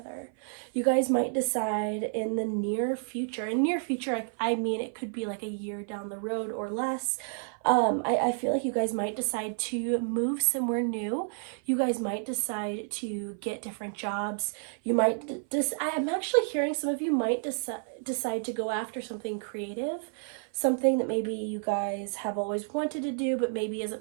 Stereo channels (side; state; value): left; silent; 55 dB below the other